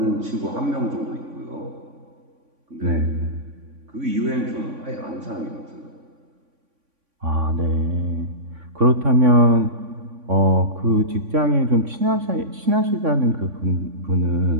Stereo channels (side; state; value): left; late; 3.5 ms